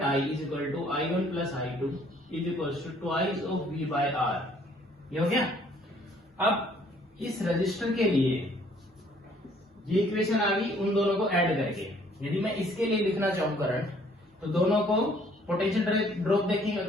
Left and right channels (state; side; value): normal; both; correlation 0.61